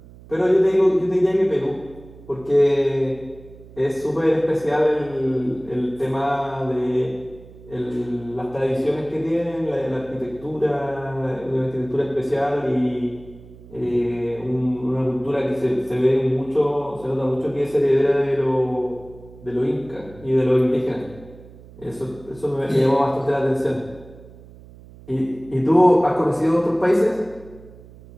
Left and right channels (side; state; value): right; noise; hum, 20 dB below the sound